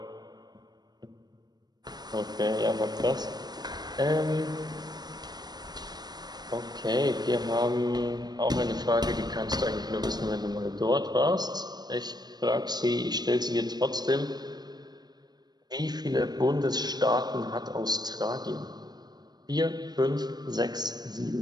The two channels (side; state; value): left; late; 0.20 ms